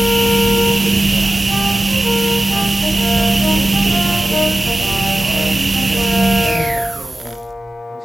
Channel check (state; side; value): normal; both; correlation 0.94